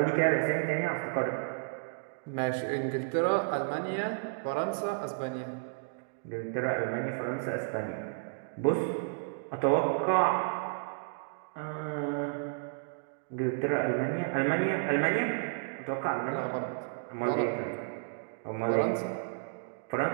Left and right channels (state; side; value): silent; left; digital silence